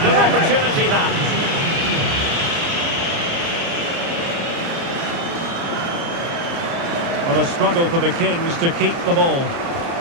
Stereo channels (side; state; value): left; late; 30 ms